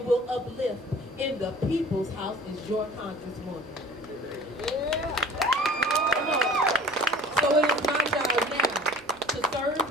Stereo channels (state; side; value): normal; both; correlation 0.45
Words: will uplift in the people's house is your congresswoman. Yeah. Come on. So it is my job now to serve